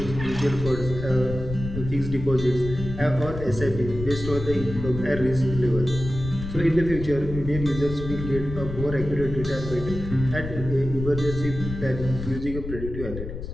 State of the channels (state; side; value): noise; left; rumble, 8 dB below the sound